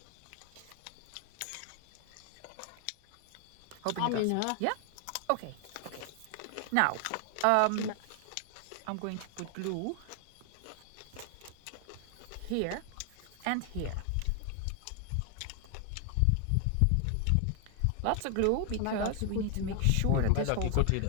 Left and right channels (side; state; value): both; different; correlation 0.00